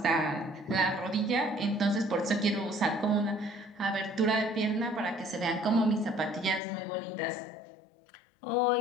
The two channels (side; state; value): right; drops out; at 6.6 s